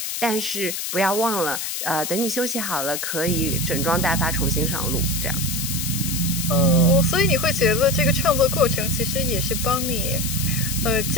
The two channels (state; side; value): noise; left; hiss, 3 dB below the sound